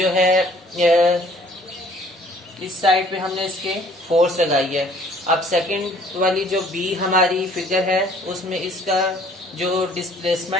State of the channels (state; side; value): normal; both; correlation 0.57